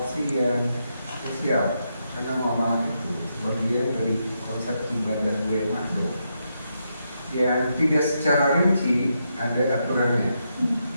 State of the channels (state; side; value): inverted; both; correlation -0.82